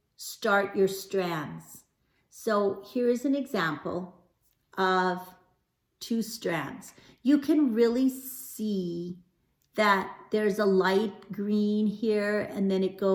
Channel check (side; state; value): both; identical; correlation 1.00